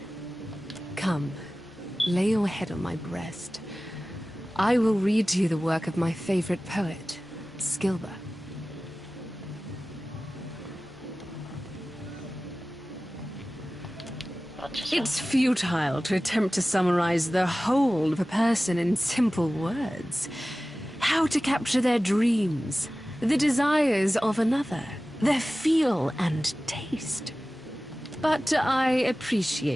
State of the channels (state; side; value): normal; both; correlation 0.96